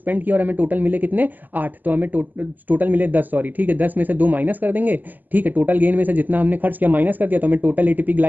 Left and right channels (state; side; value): late; left; 0.085 ms